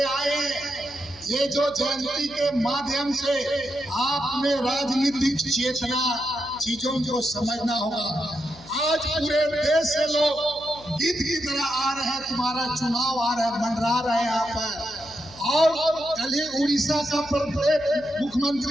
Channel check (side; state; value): left; noise; hum, 21 dB below the sound